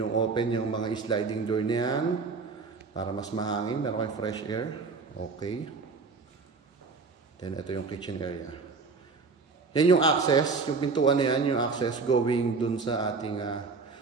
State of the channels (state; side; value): quieter; left; 4.5 dB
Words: open yung mga sliding door na yan para mas mahangin. Meron kayong fresh air. Okay. Then, ito yung kitchen area. Yan yung access. Yung pintuan na yan, yung access going dun sa ating